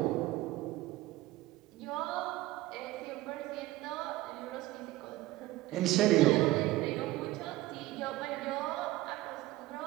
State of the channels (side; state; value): left; quieter; 17.4 dB